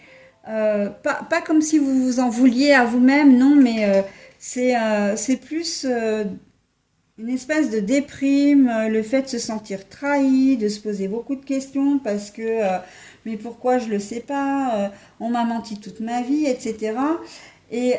pas comme si vous vous en vouliez à vous-même, non, mais c'est plus une espèce de déprime, le fait de se sentir trahi, de se poser beaucoup de questions parce que mais pourquoi je ne le sais pas, on m'a menti toute ma vie, etc. Et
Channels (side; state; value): both; identical; correlation 1.00